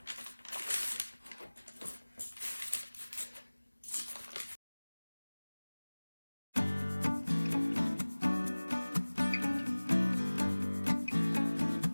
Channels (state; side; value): inverted; both; correlation -1.00